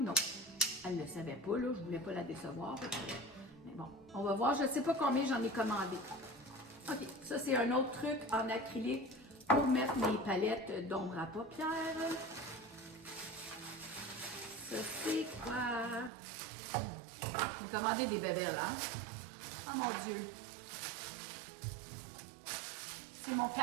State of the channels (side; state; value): left; drops out; at 16.1 s